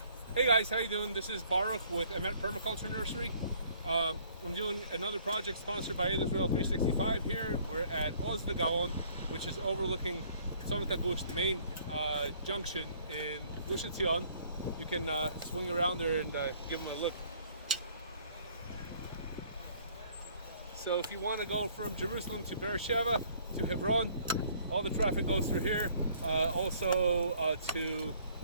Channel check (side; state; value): both; inverted; correlation -0.60